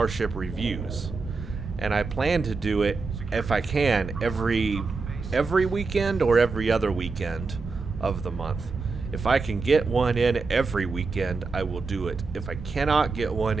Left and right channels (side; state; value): left; quieter; 4.2 dB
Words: reviews. And I plan to do it, if I can, every weekend or every other weekend of the month. If I can get one in every weekend, I will do it. If I cannot get one